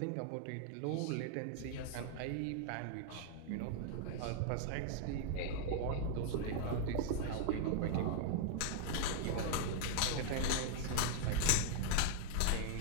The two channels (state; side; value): different; both; correlation -0.01